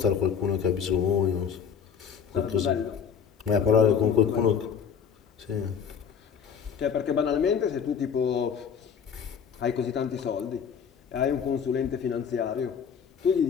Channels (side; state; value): right; quieter; 7.1 dB